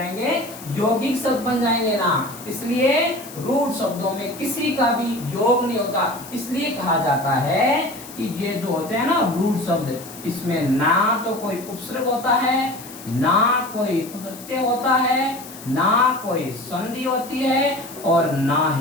यौगिक शब्द बन जाएंगे ना, इसलिए रूट शब्दों में किसी का भी योग नहीं होता। इसलिए कहा जाता है कि ये जो होते हैं ना रूट शब्द, इसमें ना तो कोई उपसर्ग होता है, ना कोई प्रत्यय होता है, ना कोई संधि होती है, और ना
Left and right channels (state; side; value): noise; left; hiss, 16 dB below the sound